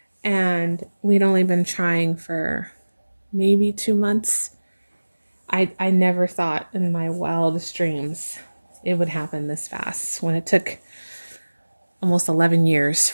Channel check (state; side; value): inverted; both; correlation -1.00